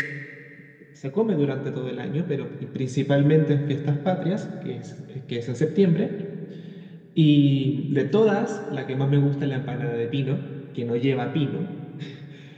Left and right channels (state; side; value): identical; both; correlation 1.00